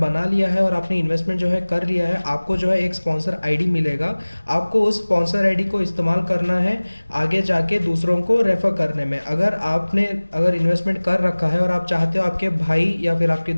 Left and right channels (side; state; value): both; inverted; correlation -1.00